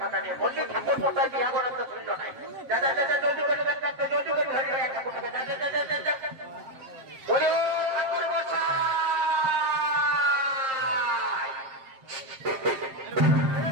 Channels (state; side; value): late; left; 7.6 ms